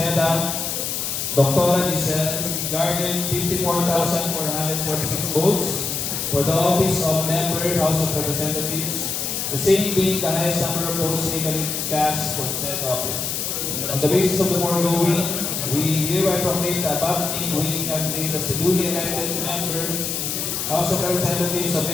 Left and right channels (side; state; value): left; noise; hiss, 2 dB below the sound